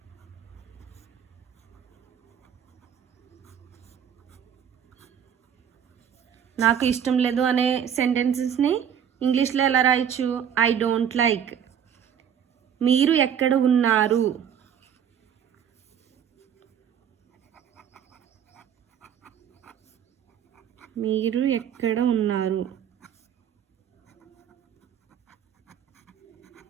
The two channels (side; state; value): left; quieter; 8.6 dB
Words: నాకు ఇష్టం లేదు అనే సెంటెన్సెస్ని ఇంగ్లీష్లో ఎలా రాయొచ్చు? I don't like. మీరు ఎక్కడ ఉన్నారు? మీరు ఎక్కడ ఉన్నారు?